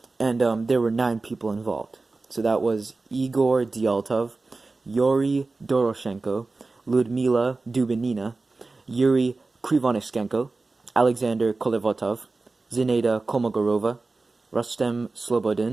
and there were 9 people involved. So that was Igor Dyaltov, Yuri Doroshenko, Ludmila Dubinina, Yuri Krivonishenko, Alexander Kolevotov, Zinaida Kolmogorova, Rustem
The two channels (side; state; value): left; quieter; 3.6 dB